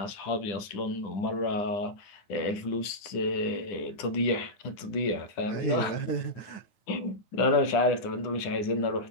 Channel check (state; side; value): late; right; 9.9 ms